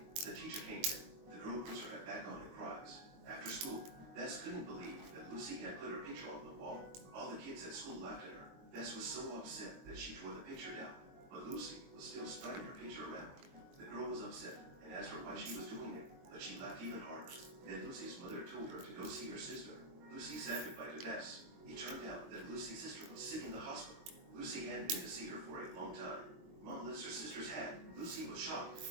The teacher came in. The girl puts her head back on and cries. After school, Bess couldn't believe that Lucy had put her picture on the wall. All the kids at school laughed at her. Bess was so upset that she tore the picture down. But Lucy was still spreading her picture around. The girl was upset and asked her why she was doing it, but she laughed even harder. Then Lucy's mother told her to go see her sister. Lucy said goodbye to Bess. It turned out that Lucy's sister was sick in the hospital. Lucy hadn't been to see her for a long time. Mom lifts her sister's hat. Lucy was shocked.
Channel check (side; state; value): left; late; 22 ms